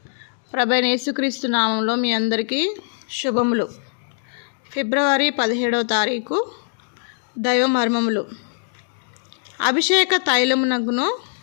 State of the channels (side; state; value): right; silent; digital silence